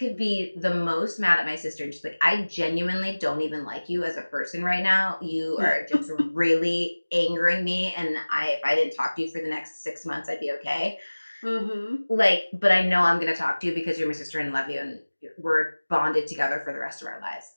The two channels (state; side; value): inverted; both; correlation -1.00